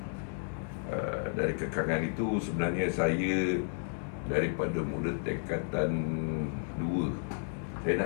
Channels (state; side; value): silent; right; digital silence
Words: Dari kekangan itu sebenarnya saya daripada muda tingkatan 2, saya